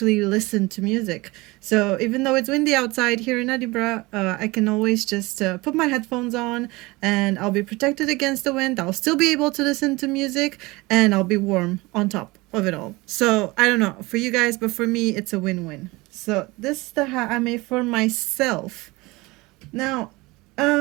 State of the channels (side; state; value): left; quieter; 22.6 dB